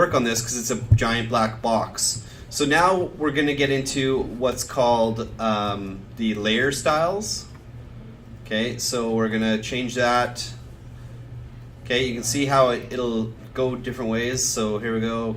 on this because it's a giant black box. So now we're going to get into what's called the layer styles. Okay, so we're going to change that. Okay, you can see how it'll go different ways. So here we go,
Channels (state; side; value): identical; both; correlation 1.00